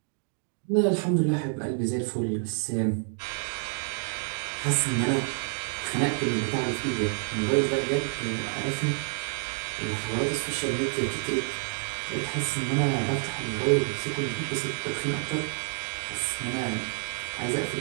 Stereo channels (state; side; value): silent; left; 59 dB below the other